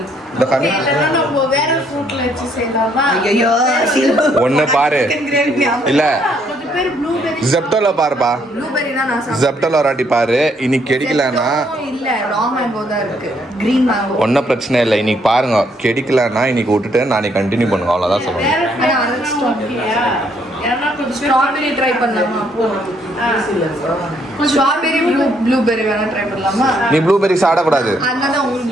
ஒன்னு பாரு. இல்ல ஜெப்டோல பாருப்பா. ஜெப்டோல ஒரு வாட்டி பாரு. இன்னைக்கு கிடைக்கலன்னா ஒன்னும் பிரச்சனை இல்லை. இன்னைக்கு பாருங்க, கிடைக்கலன்னா இன்னைக்கு விட்டுட்டு நாளைக்கு கண்டினியூ பண்ணுங்க. அவ்வளவுதான் சொல்லுங்க. ஸ்ட்ராபெரி ட்ரை பண்ணலாமா? ஸ்ட்ராபெரி ப்ளூபெரி வேணா ட்ரை பண்ணலாமா? நீ ப்ளூபெரி சாப்பிடக்கூடாது. அதனால உங்களுக்கு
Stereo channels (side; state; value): both; normal; correlation 0.70